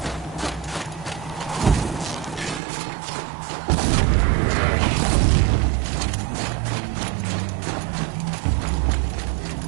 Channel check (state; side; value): drops out; left; at 2.6 s